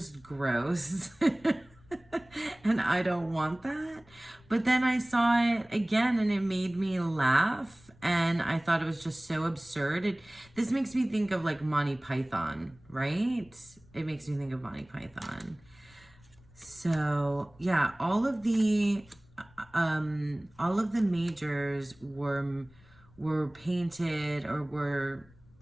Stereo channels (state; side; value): noise; left; rumble, 27 dB below the sound